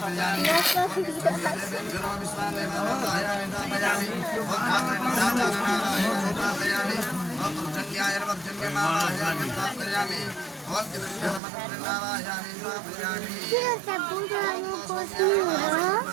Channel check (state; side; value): drops out; left; at 11.4 s